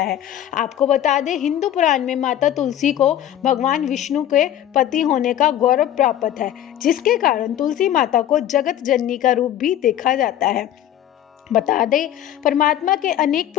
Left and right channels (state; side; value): quieter; right; 11.5 dB